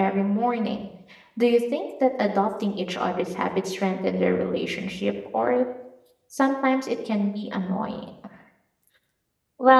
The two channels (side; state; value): both; identical; correlation 1.00